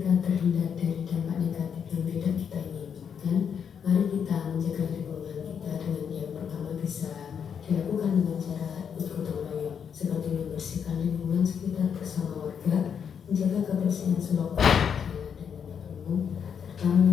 terhindar dari dampak negatif yang tidak kita inginkan, mari kita menjaga lingkungan kita dengan yang pertama bisa dilakukan dengan cara gotong royong, seperti membersihkan lingkungan sekitar bersama warga, menjaga kebersihan selokan, jalan dan tempat umum, serta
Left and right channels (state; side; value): quieter; right; 7.4 dB